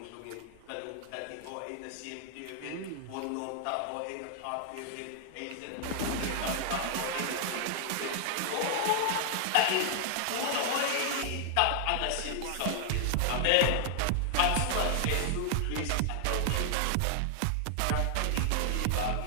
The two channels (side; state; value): both; different; correlation 0.00